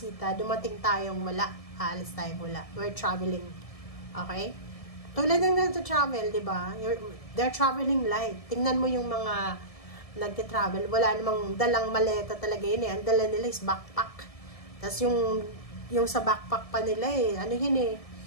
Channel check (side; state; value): right; late; 1.7 ms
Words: Dumating tayong wala. Alis tayong wala. We're traveling. Okay? Tulad ng nagta-travel, di ba? They're traveling light. Tingnan mo yung mga nagta-travel. Wala namang dalang maleta talaga yun Ang dala nila is backpack. Tapos yung sa backpack pa nila ano yun